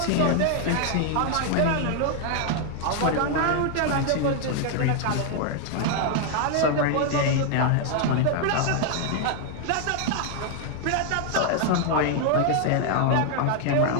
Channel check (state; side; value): different; both; correlation 0.00